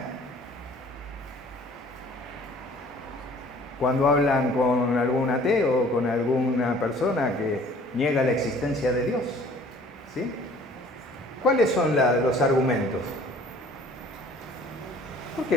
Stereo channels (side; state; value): both; normal; correlation 0.52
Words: Cuando hablan con algún ateo o con alguna persona que niega la existencia de Dios, ¿sí? ¿Cuáles son los argumentos? ¿Por